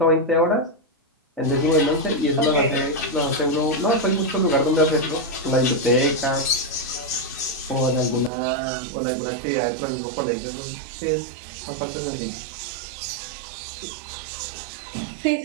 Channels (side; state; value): left; drops out; at 8.3 s